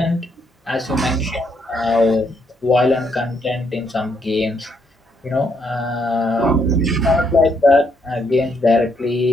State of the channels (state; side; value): normal; both; correlation 0.74